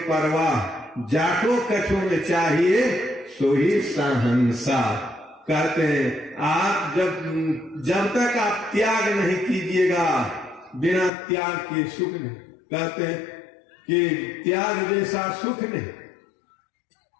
जाको कछो में चाहिए सो ही सहंसा। कहते हैं आप जब तक आप त्याग नहीं कीजिएगा, बिना त्याग के सुख नहीं। कहते हैं कि त्याग जैसा सुख नहीं,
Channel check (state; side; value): drops out; right; at 11.1 s